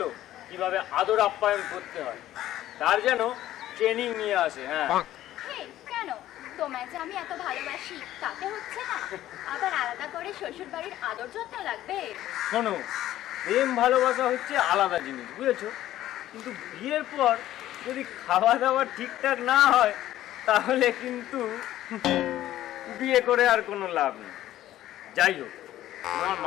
কিভাবে আদর আপ্যায়ন করতে হয়, তার যেন ট্রেনিং নিয়ে আসে। হ্যাঁ এই কেন? তোমায় যে আমি এত ভালোবাসি তাতে হচ্ছে না? আবার আলাদা করে শ্বশুর বাড়ির আদর যত্ন লাগবে? শোনো, প্রেম ভালোবাসা হচ্ছে আলাদা জিনিস, বুঝেছো? কিন্তু বিয়ের পর যদি খাওয়া দাওয়া ঠিকঠাক না হয়, তাহলে কিন্তু বিয়ে করে আর কোনো লাভ নেই। যাই হোক, তোমার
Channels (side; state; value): right; quieter; 13.6 dB